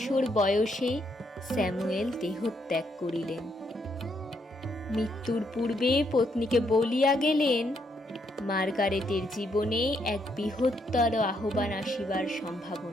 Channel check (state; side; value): normal; both; correlation 0.75